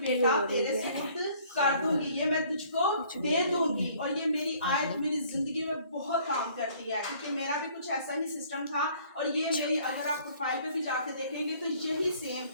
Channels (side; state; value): both; inverted; correlation -0.58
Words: तेरे सुपुर्द कर दूंगी, ये मैं तुझको दे दूंगी। और ये मेरी आयत मेरी जिंदगी में बहुत काम करती है, क्योंकि मेरा भी कुछ ऐसा ही सिस्टम था। और ये मेरी, अगर आप प्रोफाइल पे भी जाके देखेंगे तो यही सेम,